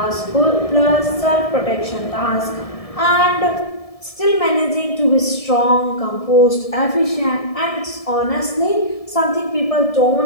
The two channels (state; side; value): late; right; 1.7 ms